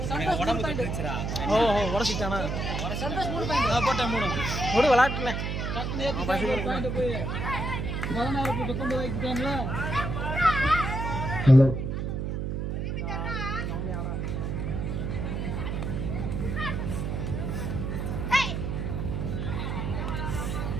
உடம்பு தட்டுச்சுடா. ஓஹோ உரசிட்டானா? சந்தோஷ் 3 பாயிண்ட் நான் போட்டேன் 3 ஓடு விளையாட்டுல டக்குனு ஏத்தி பாயிண்ட் போய் 16 19 வைக்கிட்டான்ல. ஹலோ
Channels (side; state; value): right; noise; hum, 2 dB below the sound